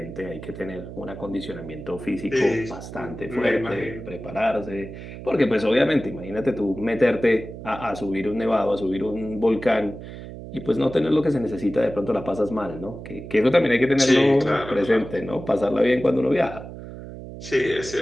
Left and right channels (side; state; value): right; noise; hum, 12 dB below the sound